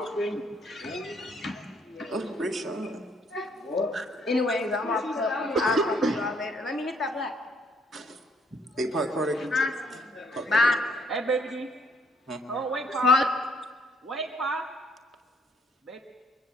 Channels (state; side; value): normal; both; correlation 0.66